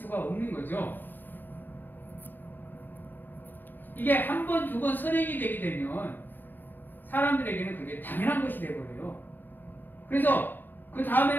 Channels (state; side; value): late; right; 0.091 ms